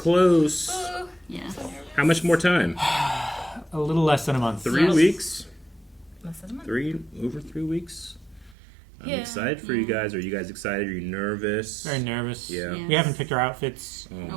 Ooh, Yeah. How much more time? A little less than a month. 3 Yes. weeks? less than a month. Over 3 weeks? I'm Yeah. excited for you guys. Are you guys excited? Are you nervous? Very nervous. Yeah. Yeah. We haven't picked our outfits. Oh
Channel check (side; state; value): left; drops out; at 8.6 s